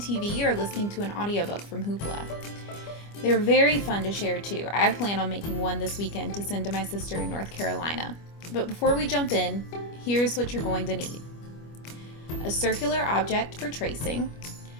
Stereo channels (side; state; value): right; late; 25 ms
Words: or listening to an audiobook from Hoopla. They're very fun to share too. I plan on making one this weekend to send to my sister in North Carolina. But before we jump in, here's what you're going to need. A circular object for tracing,